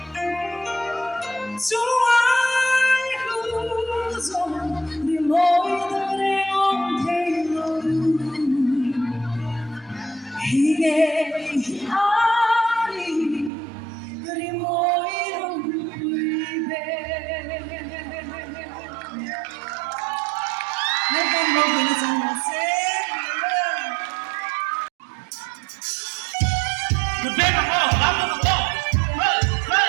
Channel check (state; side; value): drops out; left; at 13.5 s